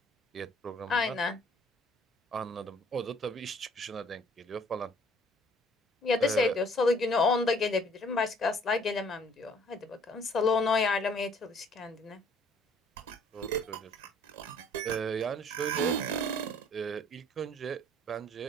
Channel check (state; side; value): normal; both; correlation 0.58